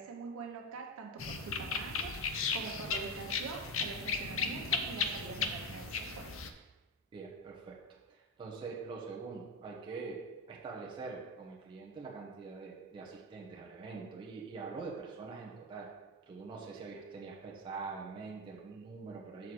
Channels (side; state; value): both; normal; correlation 0.13